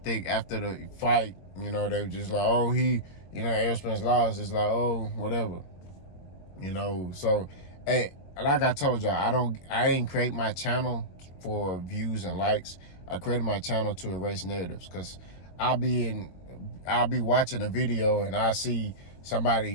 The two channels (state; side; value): late; right; 22 ms